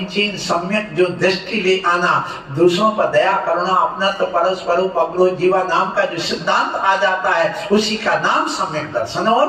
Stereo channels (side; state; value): both; identical; correlation 1.00